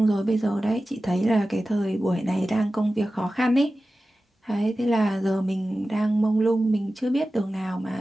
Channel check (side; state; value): both; normal; correlation 0.95